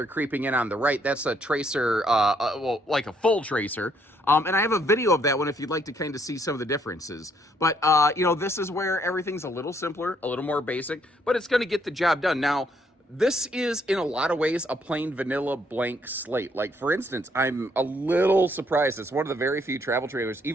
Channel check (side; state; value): both; normal; correlation 0.69